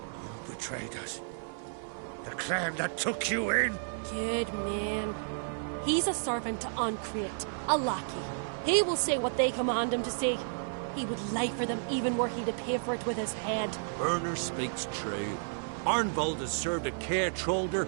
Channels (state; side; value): silent; left; 56 dB below the other